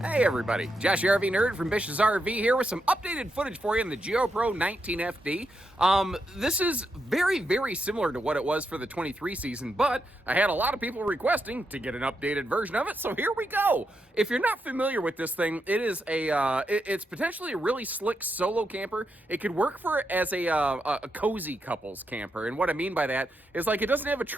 Hey everybody, Josh the RV Nerd from Bish's RV here with some updated footage for you in the Geo Pro 19FD. This is very similar to what it was for the 23 season, but I had a lot of people requesting to get an updated version of it, so here we go. If you're not familiar with this thing, it is it's potentially a really slick solo camper. It could work for as a cozy couples camper, and what I mean by that is like it doesn't have a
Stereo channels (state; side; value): normal; both; correlation 0.83